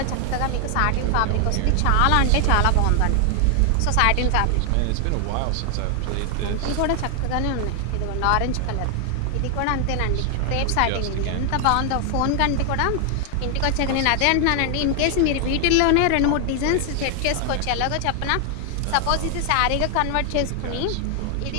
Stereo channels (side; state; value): both; different; correlation 0.00